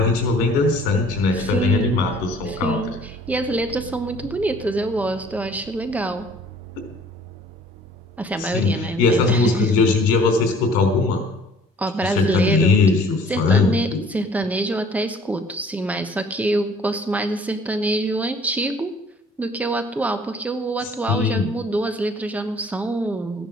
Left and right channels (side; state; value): both; normal; correlation 0.54